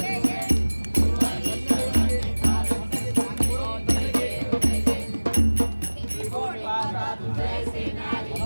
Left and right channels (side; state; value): both; inverted; correlation -1.00